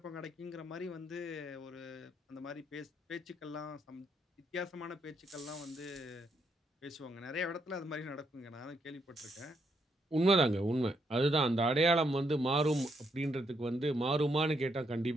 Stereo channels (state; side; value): normal; both; correlation 0.76